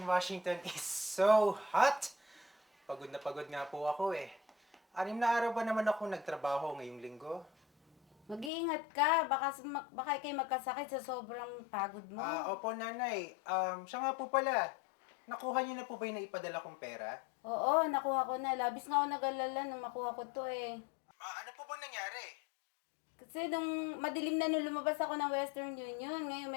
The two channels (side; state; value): right; drops out; at 8.5 s